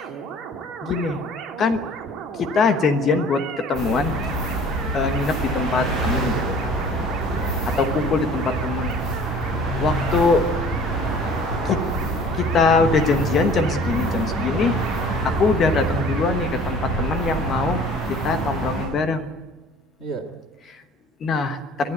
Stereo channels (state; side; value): normal; both; correlation 0.49